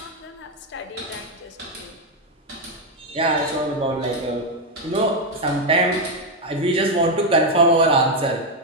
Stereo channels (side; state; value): both; normal; correlation 0.04